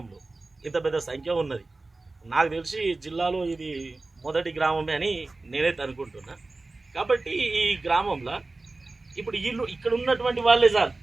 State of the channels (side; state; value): left; quieter; 3.3 dB